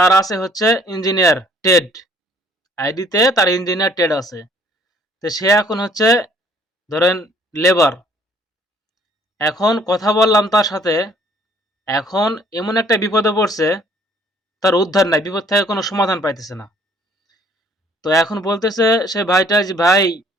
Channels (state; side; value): normal; both; correlation 0.60